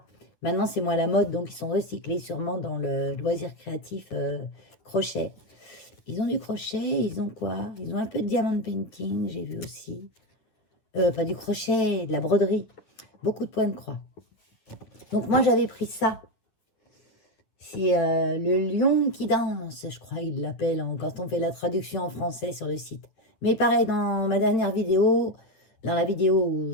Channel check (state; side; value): late; right; 9.8 ms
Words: Maintenant, c'est moins la mode, donc ils sont recyclés sûrement dans le loisir créatif crochet. Ils ont du crochet, ils ont quoi? Ils ont un peu de diamond painting, j'ai vu aussi. Pas du crochet, de la broderie. Beaucoup de points de croix. Donc moi j'avais pris ça. C'est le lion qui danse, je crois qu'ils l'appellent quand on fait la traduction en français sur le site. Mais pareil, dans ma dernière vidéo, dans la vidéo où